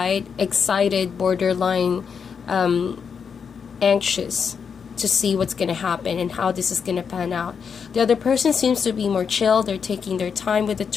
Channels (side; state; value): right; quieter; 6.5 dB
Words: excited, borderline anxious to see what's going to happen and how this is going to pan out. The other person seems to be more chill. They're taking their time with the